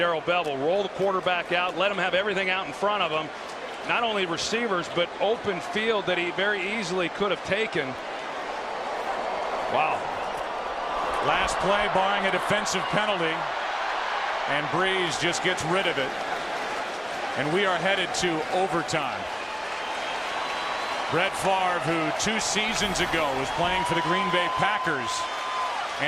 Bevell. Roll the quarterback out, let him have everything out in front of him. Not only receivers, but open field that he very easily could have taken. Wow. Last play barring a defensive penalty, and Breeze just gets rid of it. And we are headed to overtime. Brett Favre, who 2 seasons ago was playing for the Green Bay Packers,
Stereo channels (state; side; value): identical; both; correlation 1.00